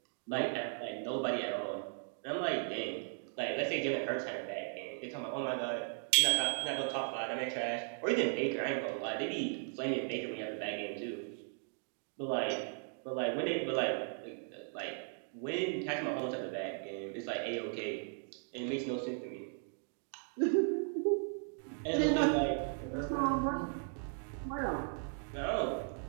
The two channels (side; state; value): left; silent; 53 dB below the other